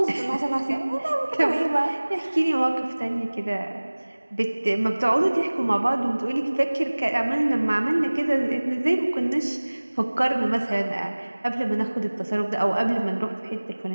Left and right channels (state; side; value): inverted; both; correlation -1.00